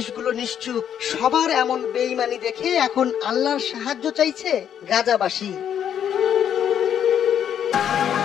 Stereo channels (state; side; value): quieter; right; 9.2 dB